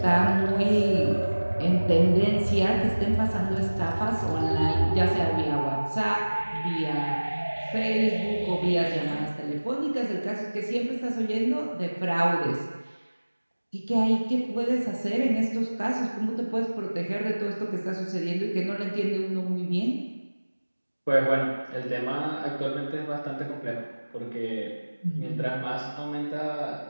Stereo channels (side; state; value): both; inverted; correlation -1.00